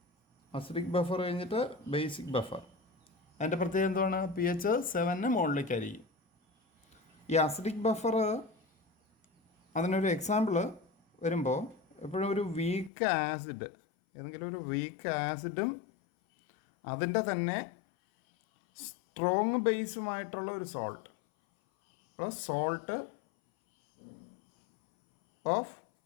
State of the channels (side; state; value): right; drops out; at 12.9 s